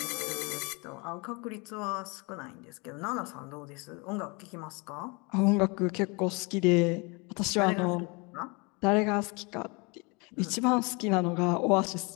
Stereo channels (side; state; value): right; quieter; 29.5 dB